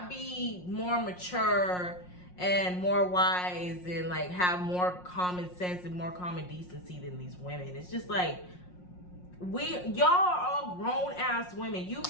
be more mature and more wise and like have more common sense and more common decency than these women. It's just like, y'all are all grown ass women. You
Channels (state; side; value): late; right; 5.6 ms